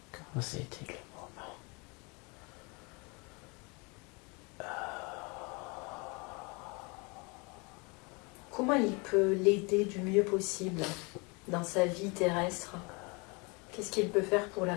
quand c'était le moment. Comment il peut l'aider du mieux possible dans sa vie terrestre? Qu'est-ce qu'il peut faire pour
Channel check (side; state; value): right; quieter; 29.8 dB